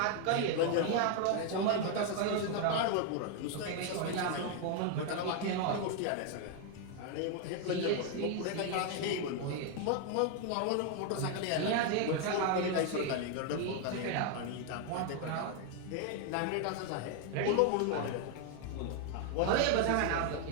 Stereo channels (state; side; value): different; both; correlation 0.01